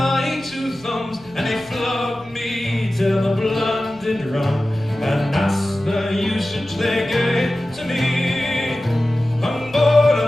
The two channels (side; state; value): left; noise; rumble, 27 dB below the sound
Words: two thumbs, and they flogged me till the blood did run, and that's the usage they gave to me. On board